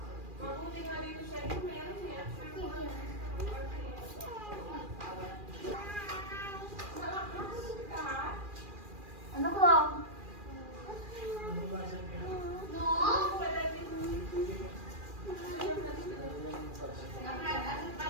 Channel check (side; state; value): left; late; 2.4 ms